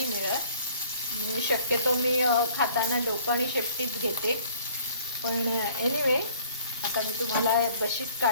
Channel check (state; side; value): inverted; both; correlation -0.56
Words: मिळत. शक्यतो मी खाताना डोकं आणि शेपटीच घेते. पण एनिवे आता मी तुम्हाला बशीत